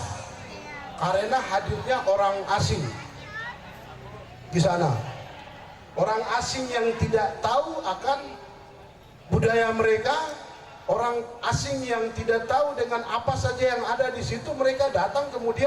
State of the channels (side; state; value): both; identical; correlation 1.00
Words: karena hadirnya orang asing di sana. Orang asing yang tidak tahu akan budaya mereka, orang asing yang tidak tahu dengan apa saja yang ada di situ, mereka datang